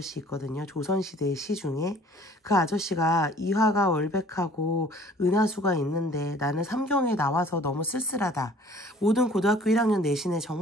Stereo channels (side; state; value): both; normal; correlation 0.53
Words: 있거든요. 조선시대의 시 중에. 그 아저씨가 이화가 월백하고 은하수가 있는데 나는 삼경에 나와서 너무 쓸쓸하다. 모든 고등학교 1학년 내신에